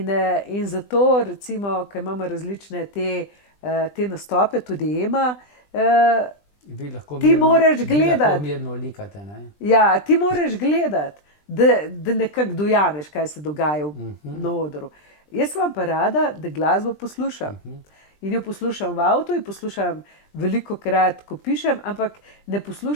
zato, recimo, ko imamo različne te te nastope, tudi Ema, Vi lahko Ti moraš vi gledati. lahko mirno likate, ne? ja, ti moraš gledati, da nekako dojameš, kaj se dogaja na odru. Jaz vam pa rada, da glasbo poslušam. In jo poslušam v avtu, in poslušam veliko krat, ko pišem, ampak ne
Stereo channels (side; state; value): right; late; 20 ms